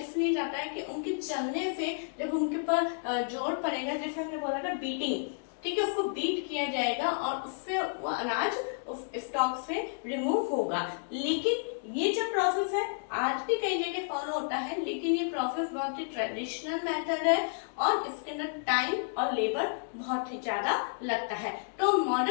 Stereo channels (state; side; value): silent; right; digital silence